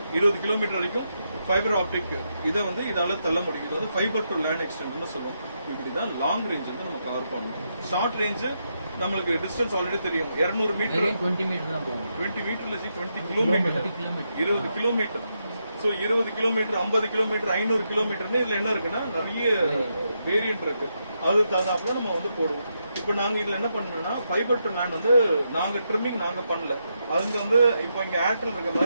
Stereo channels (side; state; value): both; inverted; correlation -0.82